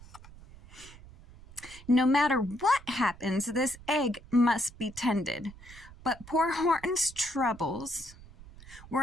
No matter what happens, this egg must be tended. But poor Horton's troubles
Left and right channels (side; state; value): right; noise; rumble, 19 dB below the sound